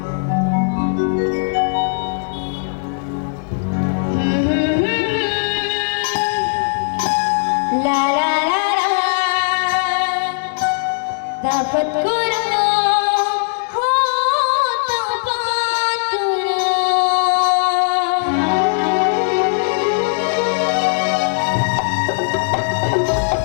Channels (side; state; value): right; silent; digital silence